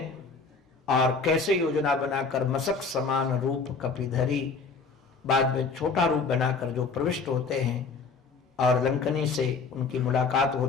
और कैसे योजना बनाकर मशक समान रूप कपिधरी, बाद में छोटा रूप बनाकर जो प्रविष्ट होते हैं, और लंकनी से उनकी मुलाकात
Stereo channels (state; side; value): quieter; right; 4.6 dB